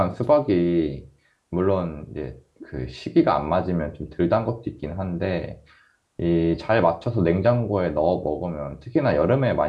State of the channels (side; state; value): both; identical; correlation 1.00